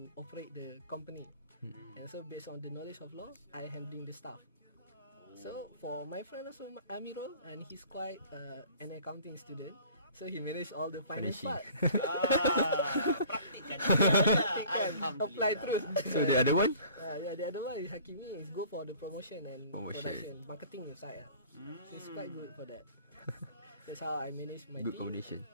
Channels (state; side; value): inverted; both; correlation -0.48